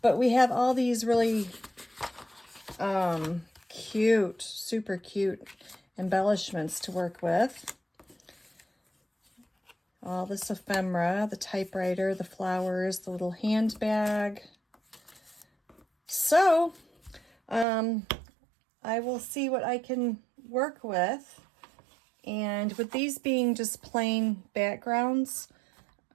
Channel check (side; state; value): left; drops out; at 17.7 s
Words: but we have all these really cute, super cute embellishments to work with. All this ephemera, the typewriter, the flowers, the little handbag. So, I will see what I can work with. And with these being just plain backgrounds,